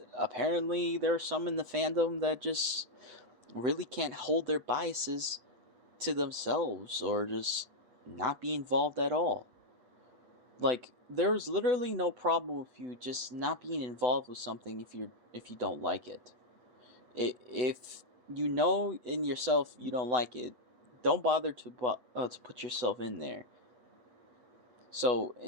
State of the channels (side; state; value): left; late; 8.2 ms